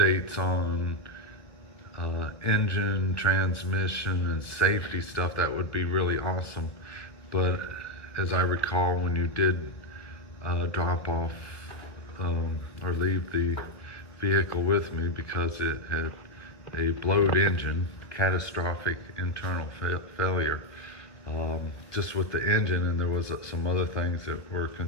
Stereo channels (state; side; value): late; right; 2.3 ms